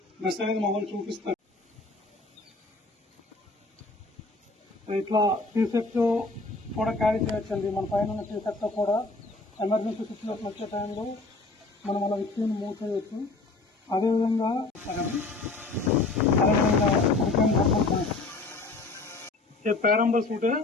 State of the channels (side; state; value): right; quieter; 3.4 dB